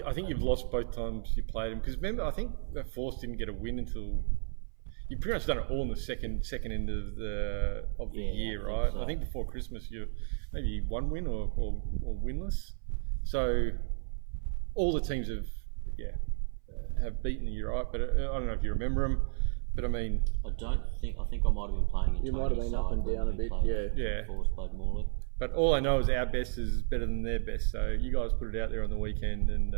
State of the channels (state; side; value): silent; left; 56 dB below the other